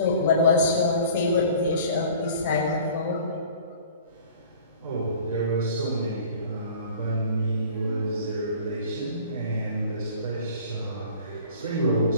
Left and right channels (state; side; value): inverted; both; correlation -0.47